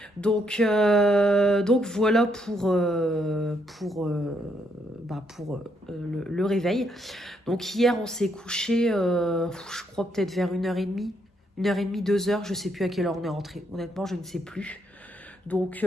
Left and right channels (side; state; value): both; normal; correlation 0.74